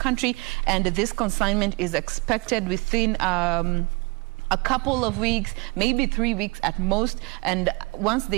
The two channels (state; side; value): quieter; left; 27.4 dB